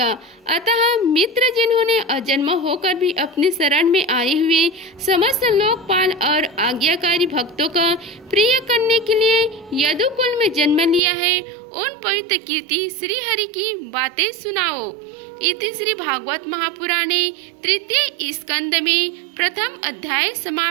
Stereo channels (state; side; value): drops out; left; at 11.0 s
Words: अतः मित्र जिन्होंने अजन्म होकर भी अपने शरण में आए हुए समस्त लोकपाल और आज्ञाकारी भक्तों का प्रिय करने के लिए यदुकुल में जन्म लिया है, उन पवित्र कीर्ति श्री हरि की बातें सुनाओ। इति श्री भागवत महापुराणे तृतीय स्कंद में प्रथम अध्याय